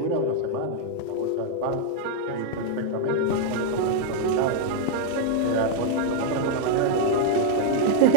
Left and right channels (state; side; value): different; both; correlation -0.01